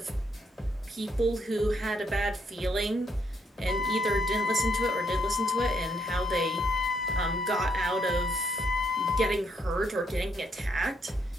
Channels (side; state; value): both; normal; correlation 0.74